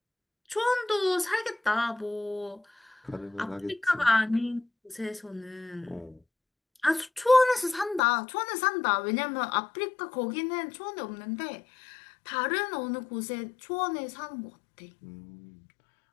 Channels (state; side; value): drops out; right; at 8.0 s